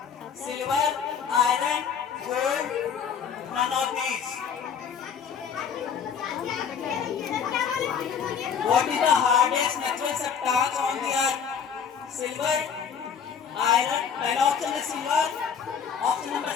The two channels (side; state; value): right; quieter; 7.1 dB